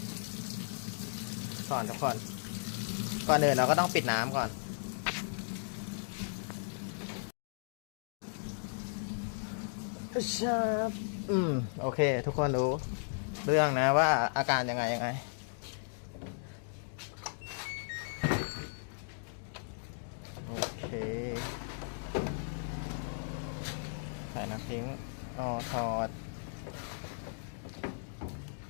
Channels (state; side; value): silent; right; digital silence